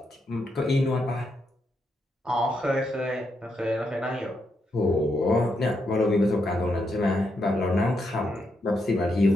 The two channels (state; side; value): normal; both; correlation 0.81